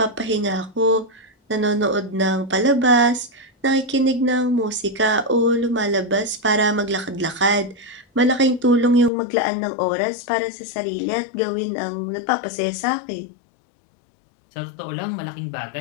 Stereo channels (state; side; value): drops out; right; at 9.1 s